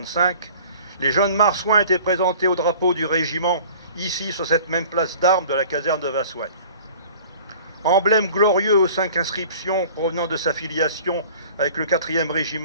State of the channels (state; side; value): inverted; both; correlation -0.47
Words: les jeunes marsouins étaient présentés au drapeau du régiment, ici sur cette même place d'armes de la caserne de Vassoigne. Emblème glorieux aux 5 inscriptions provenant de sa filiation avec le 4e